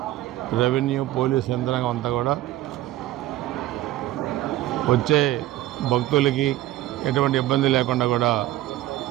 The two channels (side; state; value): left; quieter; 15.4 dB